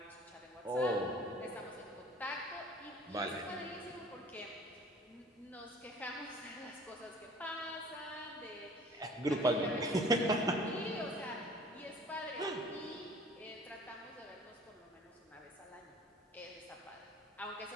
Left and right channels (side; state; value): both; normal; correlation 0.49